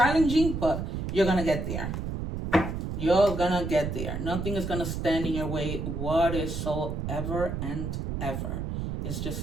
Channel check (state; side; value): noise; right; rumble, 4 dB below the sound